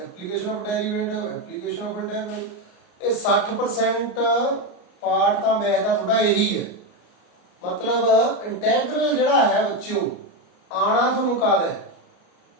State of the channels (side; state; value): right; late; 33 ms